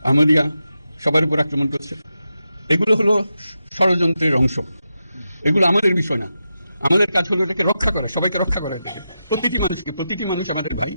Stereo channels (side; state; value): both; inverted; correlation -0.88